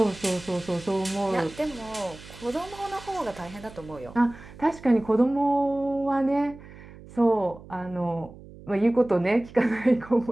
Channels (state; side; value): noise; right; hum, 18 dB below the sound